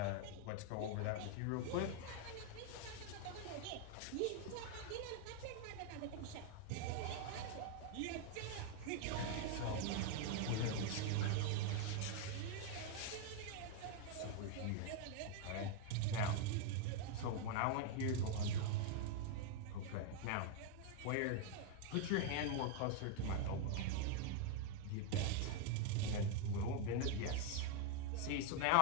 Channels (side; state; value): both; different; correlation 0.00